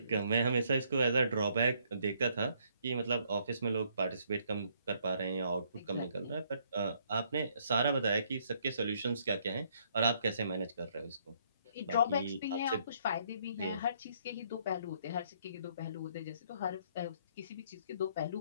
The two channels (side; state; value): both; inverted; correlation -0.68